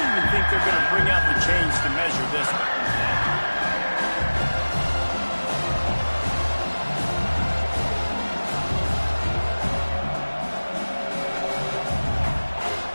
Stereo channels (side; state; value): both; inverted; correlation -1.00